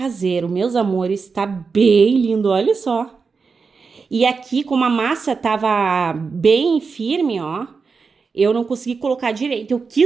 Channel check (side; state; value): left; quieter; 5.0 dB